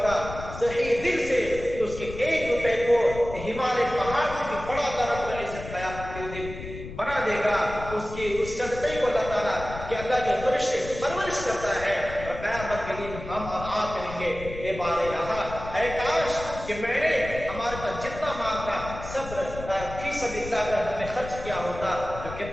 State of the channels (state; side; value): noise; left; rumble, 11 dB below the sound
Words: صحیح دل سے تو اس کے 1 روپے کو ہمالیہ پہاڑ سے بھی بڑا رب العزت قیامت کے دن بنا دے گا۔ اس صدقے کو اللہ تعالیٰ کہ اللہ کے فرشتے پرورش کرتا ہے، اور قیامت کے دن ہم آپ کہیں گے اے بار الہ، اے کاش کہ میں نے ہمارے پاس جتنا مال تھا سب فی سبیل اللہ اگر ہم نے خرچ کیا ہوتا تو